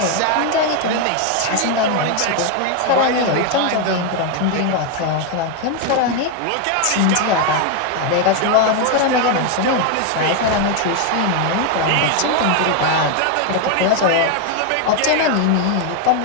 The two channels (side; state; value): both; different; correlation 0.01